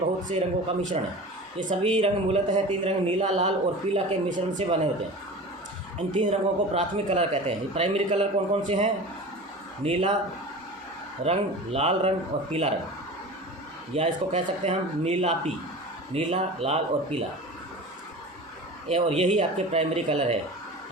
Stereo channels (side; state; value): both; normal; correlation 0.35